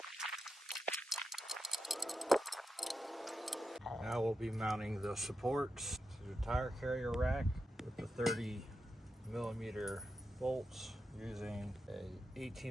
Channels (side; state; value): both; normal; correlation 0.87